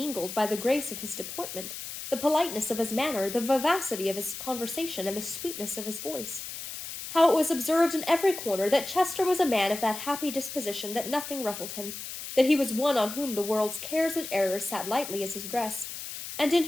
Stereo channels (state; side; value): noise; left; hiss, 9 dB below the sound